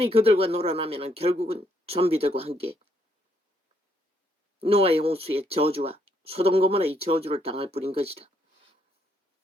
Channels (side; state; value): both; normal; correlation 0.72